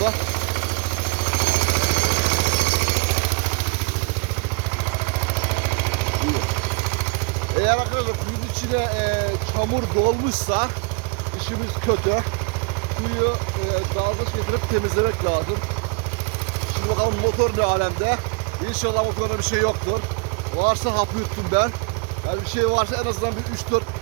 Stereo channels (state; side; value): quieter; left; 30.4 dB